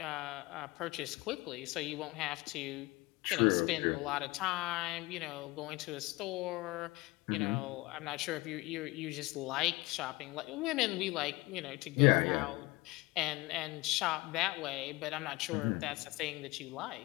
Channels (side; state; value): right; quieter; 21.9 dB